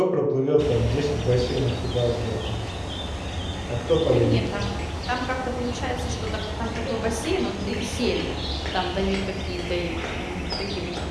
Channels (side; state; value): both; identical; correlation 1.00